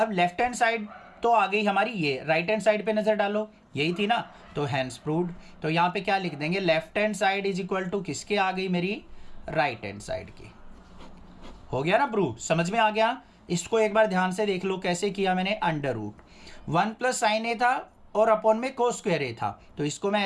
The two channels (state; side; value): identical; both; correlation 1.00